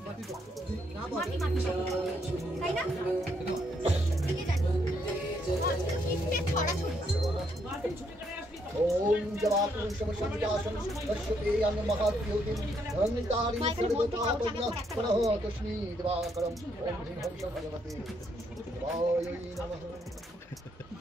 তাই না? ओम जवापुरुष समसंजासन पश्यते अन्न महाद्योतिं अहंतारि सर्वतापज्ञ पुनः तस्मै दिवाकरं ओम ह्रीं हंस भगवते वायै नमः।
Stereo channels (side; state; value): both; normal; correlation 0.74